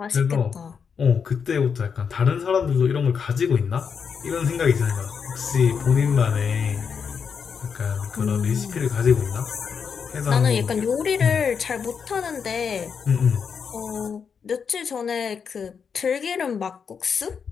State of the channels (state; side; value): quieter; right; 6.4 dB